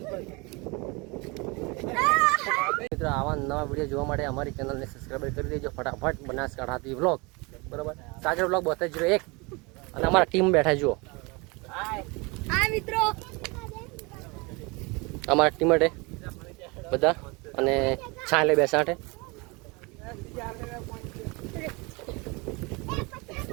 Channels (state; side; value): quieter; left; 27.4 dB